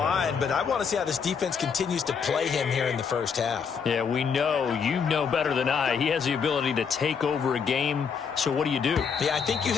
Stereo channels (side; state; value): right; quieter; 6.3 dB